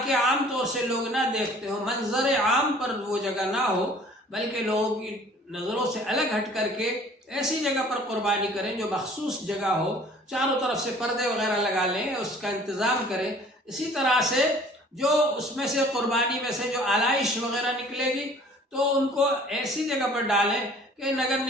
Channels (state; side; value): normal; both; correlation 0.52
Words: کہ عام طور سے لوگ نہ دیکھتے ہوں، منظر عام پر وہ جگہ نہ ہو، بلکہ لوگوں کی نظروں سے الگ ہٹ کر کے ایسی جگہ پر قربانی کریں جو مخصوص جگہ ہو، چاروں طرف سے پردے وغیرہ لگا لیں، اس کا انتظام کریں۔ اسی طرح سے جو اس میں سے قربانی میں سے جو آلائش وغیرہ نکلے گی تو ان کو ایسی جگہ پر ڈالیں کہ نگر